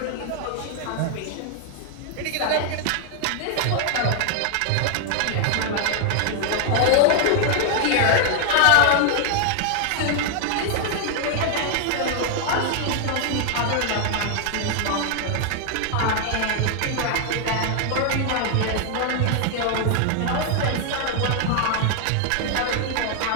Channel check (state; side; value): different; both; correlation 0.00